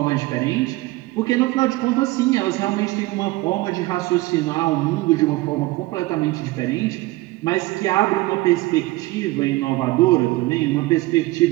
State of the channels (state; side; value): quieter; left; 19.8 dB